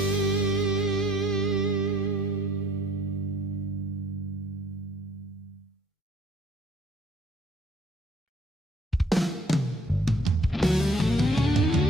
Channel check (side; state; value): both; normal; correlation 0.59